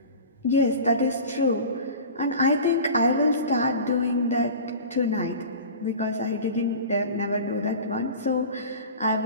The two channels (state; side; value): inverted; both; correlation -0.35